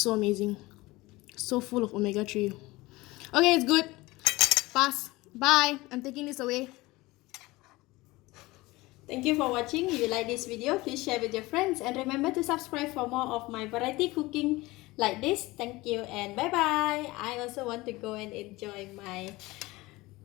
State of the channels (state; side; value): quieter; right; 20.7 dB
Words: so amazing. So full of omega-3. Okay, it's good. Pass. Bye. I'm taking this away. Thank you for watching. If you like this video, please share with your friends and remember to subscribe for more of my variety cooking like this. Thank you and bye bye. I also want to go and enjoy my